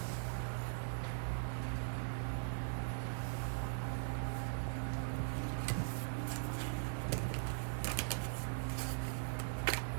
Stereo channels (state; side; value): silent; left; digital silence